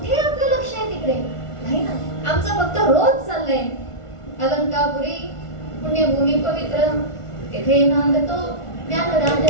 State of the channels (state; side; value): late; right; 1.5 ms